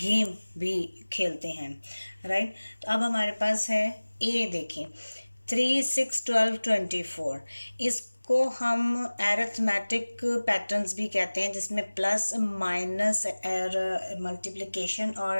गेम भी खेलते हैं, राइट? तो अब हमारे पास है ए. देखें 3, 6, 12, 24. इसको हम एरिथमेटिक पैटर्न्स भी कहते हैं जिसमें प्लस माइनस और मल्टीप्लिकेशन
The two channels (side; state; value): both; inverted; correlation -1.00